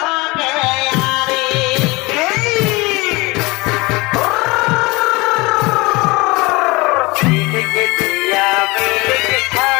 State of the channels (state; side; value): quieter; right; 24.0 dB